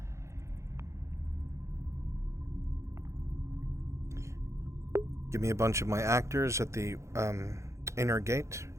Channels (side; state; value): left; late; 0.14 ms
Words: Give me a bunch of my actors at the inner gate.